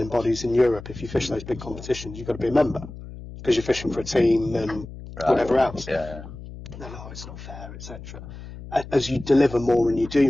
bodies in Europe, if you fish those big competitions, you've got to be a member, because you're fishing for a team and whatever else. No, it's not fair, etc. As you deliver more and you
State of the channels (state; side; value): noise; left; hum, 13 dB below the sound